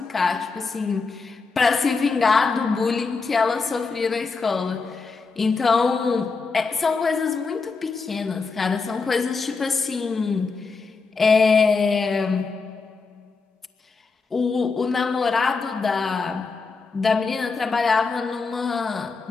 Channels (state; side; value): quieter; right; 4.5 dB